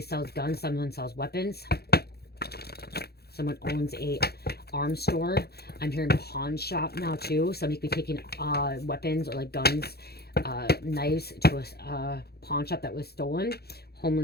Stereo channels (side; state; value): right; late; 0.46 ms